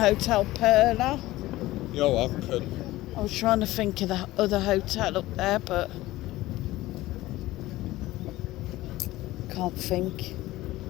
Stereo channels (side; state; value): right; quieter; 17.3 dB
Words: Perla. You're welcome. I was trying to think of the other hotel up there, but can't think.